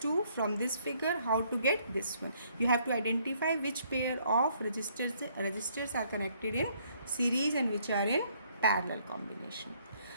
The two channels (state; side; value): inverted; both; correlation -0.66